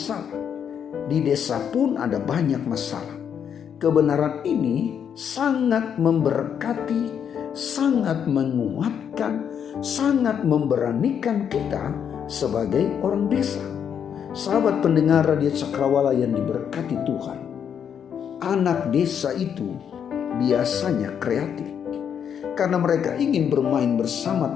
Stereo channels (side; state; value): right; quieter; 8.1 dB